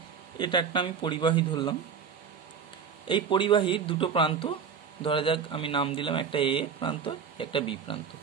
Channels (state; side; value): quieter; left; 6.6 dB